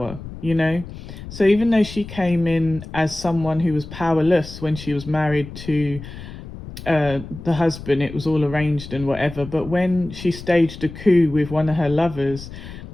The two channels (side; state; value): left; noise; rumble, 13 dB below the sound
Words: so even though she came in as someone who was powerless when she was married to the husband, it was all arranged and whatever. But when she staged a coup with one of her lovers